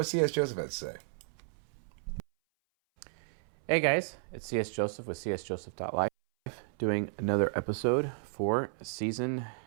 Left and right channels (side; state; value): left; silent; 56 dB below the other